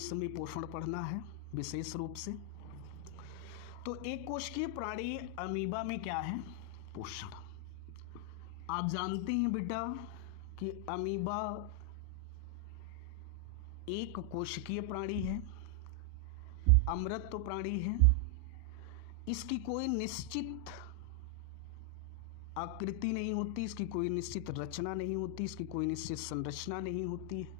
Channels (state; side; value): different; both; correlation 0.00